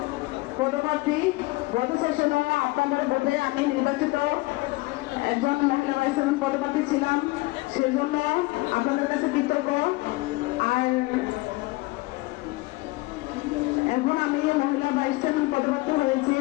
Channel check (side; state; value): right; quieter; 22.2 dB